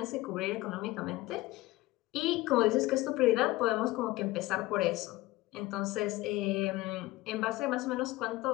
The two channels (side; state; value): right; quieter; 18.7 dB